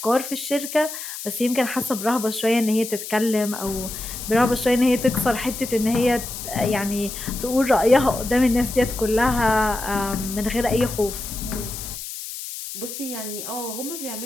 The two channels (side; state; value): left; noise; hiss, 9 dB below the sound